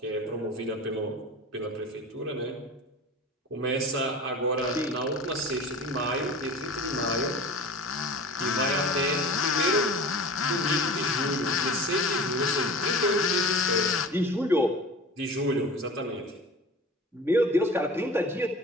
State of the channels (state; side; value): normal; both; correlation 0.37